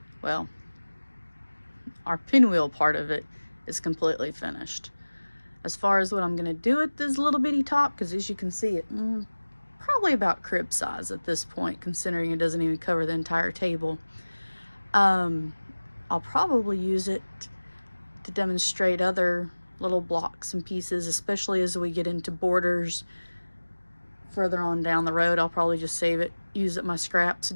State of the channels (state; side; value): inverted; both; correlation -1.00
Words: Well, our pinwheel part of it is completely finished. As far as what I'm gonna do with this little bitty top, because as you can see, it probably about crib size at this point, considering it doesn't even cover the entire table. I'll probably use it to demonstrate other little blocks and pieces, especially as we get into borders further on down the road. I'll probably just save it, use it my scraps,